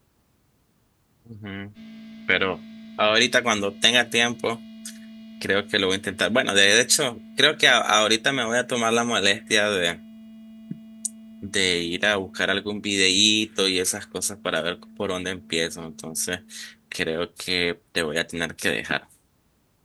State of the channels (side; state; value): both; identical; correlation 1.00